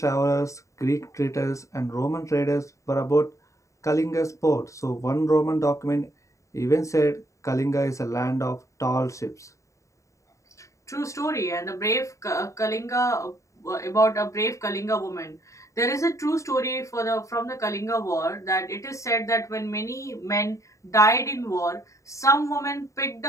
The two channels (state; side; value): late; right; 0.15 ms